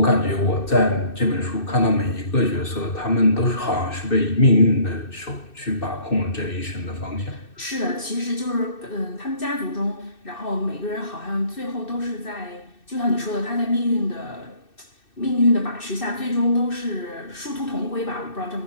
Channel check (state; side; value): late; right; 2.6 ms